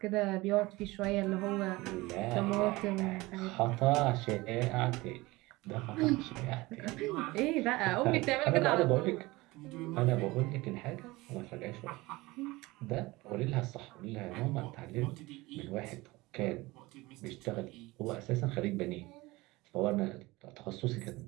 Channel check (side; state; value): left; quieter; 21.1 dB